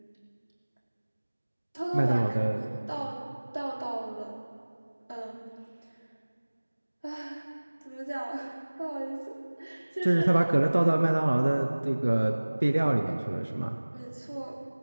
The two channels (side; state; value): both; inverted; correlation -1.00